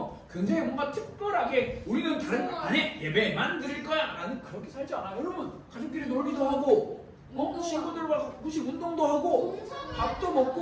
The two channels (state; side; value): identical; both; correlation 1.00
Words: 굉장히 뭔가 특별하게 우리는 다른 거 안 해, 예배만 드릴 거야 라는 그렇게 살지 않아요. 여러분, 가족끼리 놀기도 하고 친구들과 가끔씩 운동도 하고 밥도